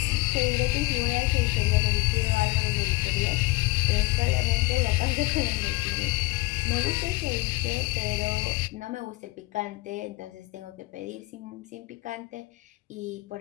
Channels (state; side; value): quieter; right; 22.3 dB